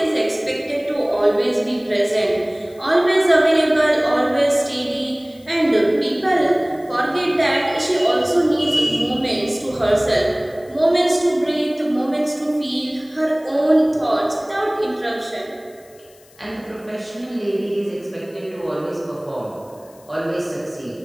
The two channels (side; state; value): left; noise; hiss, 28 dB below the sound